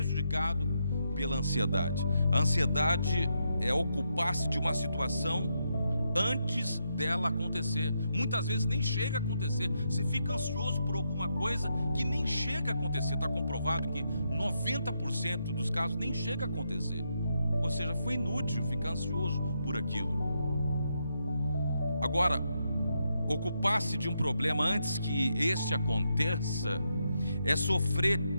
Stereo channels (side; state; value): both; inverted; correlation -0.81